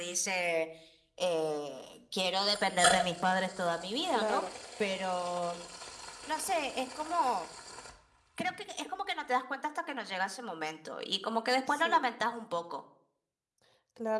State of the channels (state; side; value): identical; both; correlation 1.00